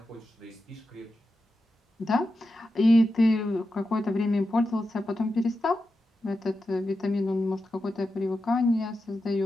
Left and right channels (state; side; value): normal; both; correlation 0.90